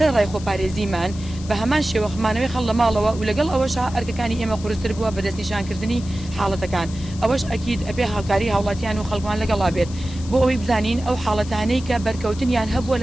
ڕای خۆپارێزیمان بە هەمان شێوەخمانەوەی خەڵ لە ماڵەوە و لەگەڵ ئەوەشە ئەرکەکانی ئێمە قورستر بووە بە دەستنیشانکردنی حاڵەتەکان ئەوەش ئەکید ئەبێ هاوکاری هاوڵاتیان و خەڵکمان لەگەڵا بێت بۆ ئەوەی بزانین ئەو حاڵەتانەی کە بەرکەوتنیان هەبووە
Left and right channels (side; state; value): left; noise; hiss, 17 dB below the sound